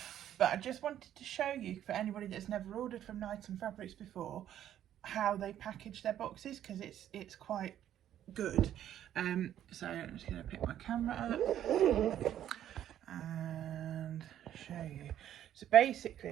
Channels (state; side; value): quieter; left; 11.1 dB